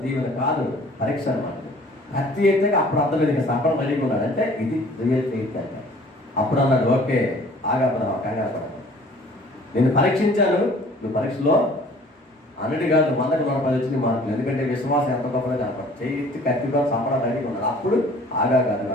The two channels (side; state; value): both; normal; correlation 0.51